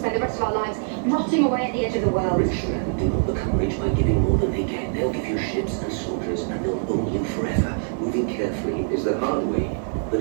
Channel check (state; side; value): silent; left; digital silence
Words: the rest of our lives rotting away at the edge of the world. Rich men do not become rich by giving more than they get. They'll give you ships and soldiers, and they'll own you forever. Moving carefully is the hard way, but